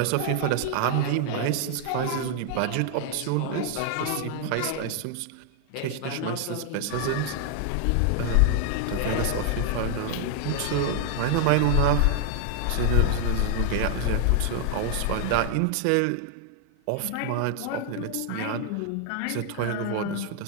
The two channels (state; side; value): different; both; correlation 0.00